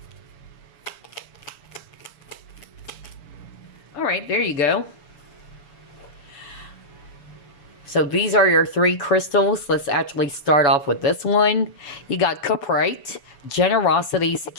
All right, there you go. So these are your 3 crystals. Let's actually start off with this one. You got Cuprite, generosity,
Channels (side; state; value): right; late; 7.0 ms